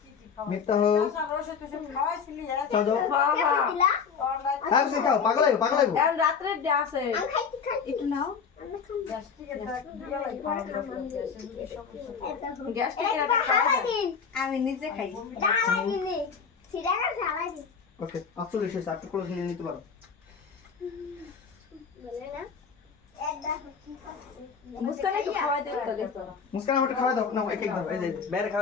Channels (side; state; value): right; quieter; 6.2 dB